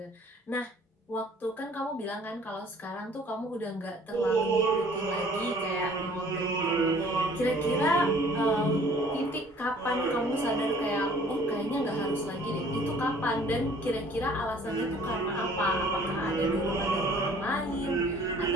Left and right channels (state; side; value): normal; both; correlation 0.54